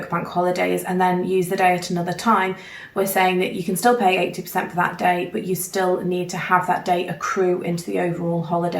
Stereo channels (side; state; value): both; identical; correlation 1.00